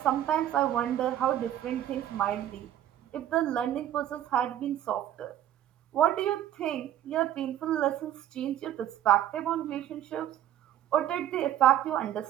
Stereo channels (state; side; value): quieter; left; 11.6 dB